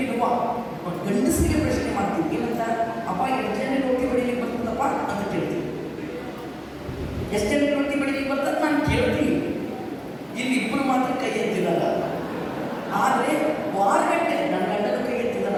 ಗಂಡಸರಿಗೆ ಪ್ರಶ್ನೆ ಮಾಡ್ತೀನಿ. ಏನಂತ, ಅಪ್ಪ ಎಷ್ಟು ಜನ ರೊಟ್ಟಿ ಬಡಿಲಿಕ್ಕೆ ಬರ್ತದಪ್ಪ ಅಂತ ಕೇಳ್ತೀನಿ. ಎಷ್ಟು ಜನ ರೊಟ್ಟಿ ಬಡಿಲಿಕ್ಕೆ ಬರ್ತದೆ ನಾನು ಕೇಳ್ತೀನಿ. ಇಲ್ಲಿ ಇಬ್ಬರು ಮಾತ್ರ ಕೈ ಎತ್ತಿರಲ್ಲ. ಆದರೆ ವಾರಗಟ್ಟೆ ನನ್ನ ಗಂಡನ ಕೈ ಎತ್ತಿದ್ದಲ್ಲ,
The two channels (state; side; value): identical; both; correlation 1.00